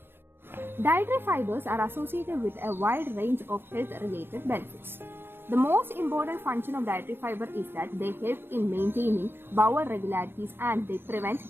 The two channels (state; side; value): late; left; 0.10 ms